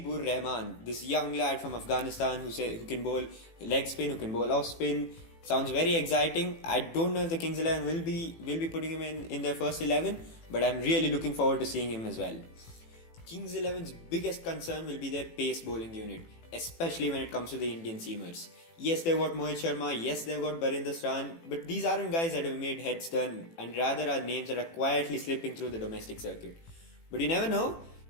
Rahman, this young lad from Afghanistan who can bowl leg spin, who can bowl off spin. Sounds very exciting. I don't know if the Kings 11 will be putting him in their first 11, but I'm really looking forward to seeing him as well. Kings 11's biggest concern will be their pace bowling unit, especially when it comes to the Indian seamers. Yes, they've got Mohit Sharma, yes, they've got Barinder Sahran, but these aren't guys that have made heads turn, and rather are names that are quietly slipping through the domestic circuit. But you never know,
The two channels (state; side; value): late; right; 18 ms